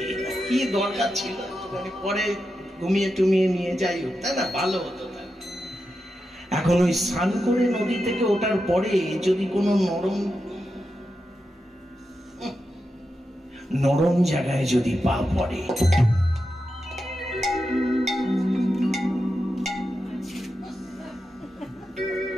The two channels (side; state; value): both; normal; correlation 0.89